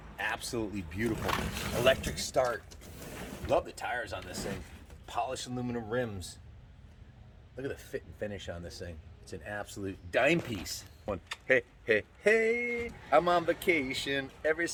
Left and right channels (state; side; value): identical; both; correlation 1.00